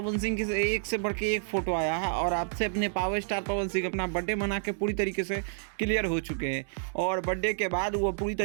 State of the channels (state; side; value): silent; left; digital silence